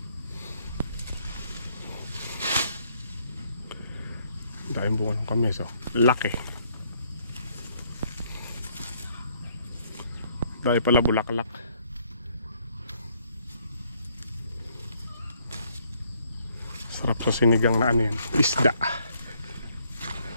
Dahil bunga ng kamyas, oh. Laki. Dahil pala bulaklak. Sarap sa sinigang na ano yan, isda.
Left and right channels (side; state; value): both; inverted; correlation -0.67